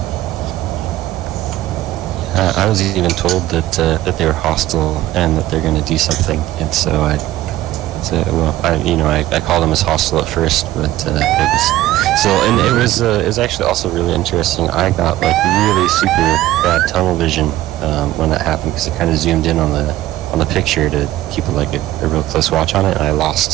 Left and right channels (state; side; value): quieter; left; 15.1 dB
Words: I was even told that they were hostile and that they're going to do something, and so I called them as hostile at first, but it was actually also really interesting. I got like really super bad tunnel vision when that happened because it kind of zoomed in on the picture to keep like a real close watch on it, and I